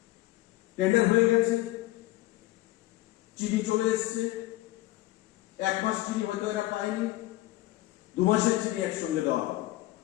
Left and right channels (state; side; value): quieter; right; 17.5 dB